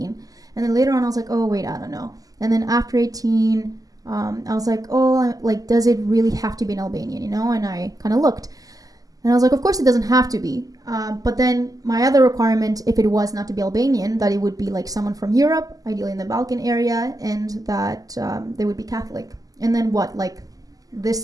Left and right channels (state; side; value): late; left; 0.17 ms